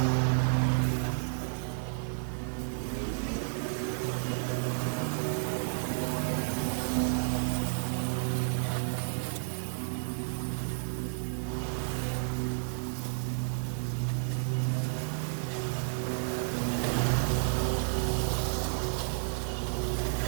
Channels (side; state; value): left; silent; digital silence